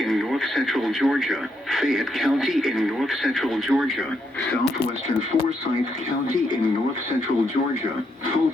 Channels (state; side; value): normal; both; correlation 0.78